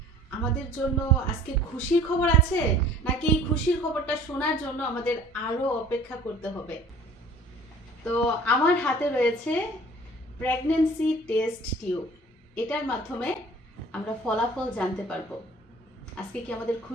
আমাদের জন্য আজকে খুশির খবর আছে নাকি এই খুশির খবরটা শোনার জন্য আমাদের আরো অপেক্ষা করতে হবে। তো আমার হাতে রয়েছে প্রেগন্যান্সি টেস্ট টিউব। এটার মাধ্যমে আমরা ফলাফল জানতে পারবো আজকে কি আমাদের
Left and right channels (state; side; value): normal; both; correlation 0.49